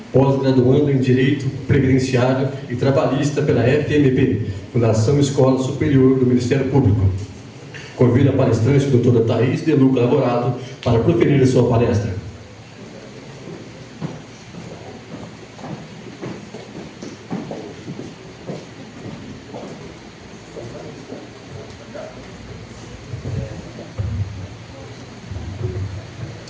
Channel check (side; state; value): both; identical; correlation 1.00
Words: pós-graduando em Direito Previdenciário e Trabalhista pela FMP, Fundação Escola Superior do Ministério Público. Convido a palestrante, doutora Thaís de Luca Lavorato, para proferir a sua palestra.